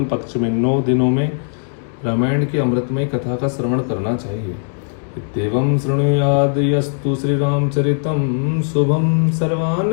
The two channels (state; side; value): silent; right; 67 dB below the other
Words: पक्ष में 9 दिनों में रामायण की अमृतमय कथा का श्रवण करना चाहिए। इत्येवं शृणुयाद यस्तु श्री रामचरितम शुभम